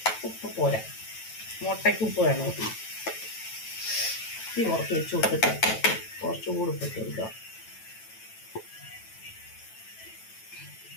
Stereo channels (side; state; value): right; late; 9.1 ms